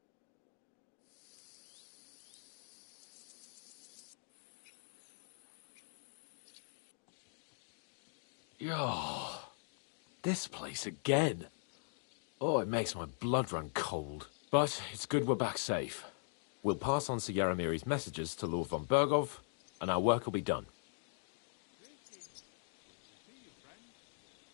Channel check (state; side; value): silent; right; digital silence